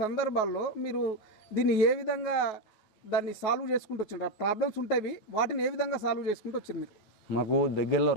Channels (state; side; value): late; right; 9.4 ms